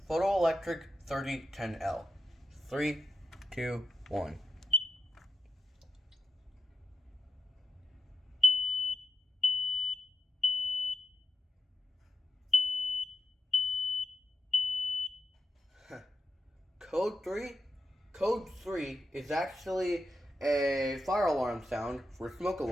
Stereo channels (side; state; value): both; normal; correlation 0.87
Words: Photoelectric 3010L. 3, 2, 1. Code 3? Code 3 is actually a fire alarm sound for smoke